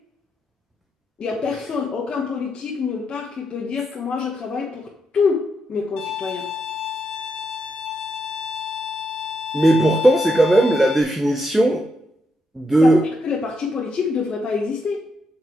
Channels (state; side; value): normal; both; correlation 0.81